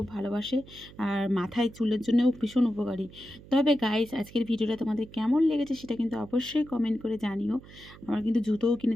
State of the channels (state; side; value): noise; right; hum, 20 dB below the sound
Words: ভালোবাসে, আর মাথায় চুলের জন্যও ভীষণ উপকারী। তবে গাইস, আজকের ভিডিওটা তোমাদের কেমন লেগেছে সেটা কিন্তু অবশ্যই কমেন্ট করে জানিও। আমার কিন্তু জুতোও